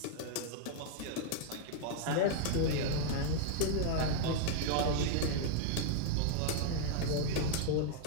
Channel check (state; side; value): different; both; correlation 0.00